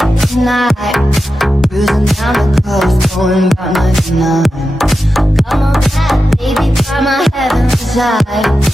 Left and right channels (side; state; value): both; normal; correlation 0.91